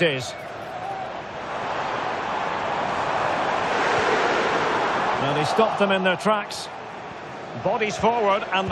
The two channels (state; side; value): identical; both; correlation 1.00